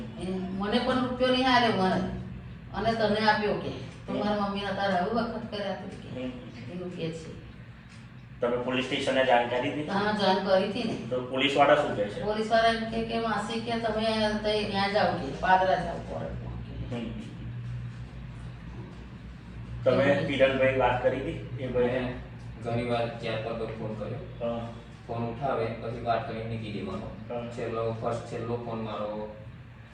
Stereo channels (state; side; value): identical; both; correlation 1.00